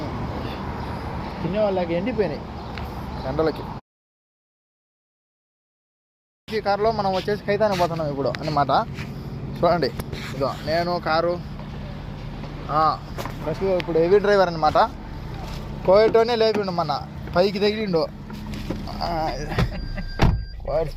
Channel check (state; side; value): identical; both; correlation 1.00